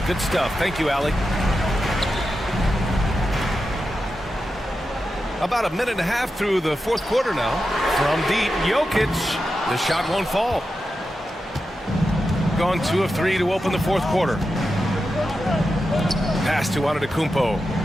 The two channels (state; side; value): normal; both; correlation 0.90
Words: good stuff. Thank you, Allie. About a minute and a half through the fourth quarter now. From deep, Jokic. The shot won't fall. Gone 2 of 3 to open the fourth quarter. Pass to Antetokounmpo.